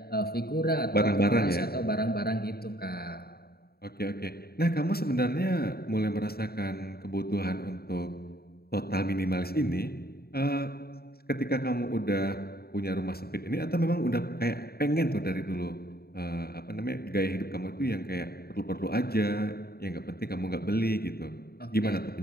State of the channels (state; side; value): late; right; 0.45 ms